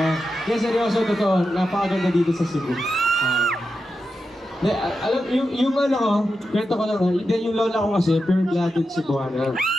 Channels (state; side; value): normal; both; correlation 0.89